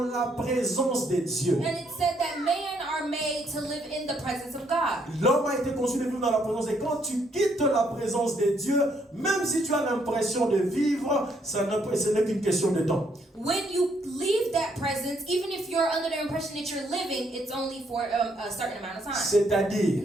présence de Dieu. And it said that men are made to live in the presence of God. L'homme a été conçu de vivre dans la présence. Et quand tu quittes la présence de Dieu, même si tu as l'impression de vivre, ce n'est qu'une question de temps. When you leave that presence, even if you're under the impression that you're living, it's only for a certain amount of time.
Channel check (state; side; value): normal; both; correlation 0.71